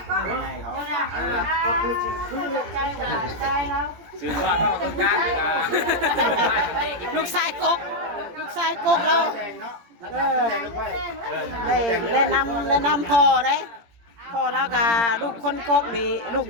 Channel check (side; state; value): left; late; 17 ms